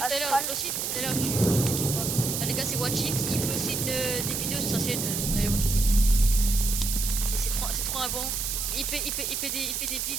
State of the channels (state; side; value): noise; right; hiss, 1 dB below the sound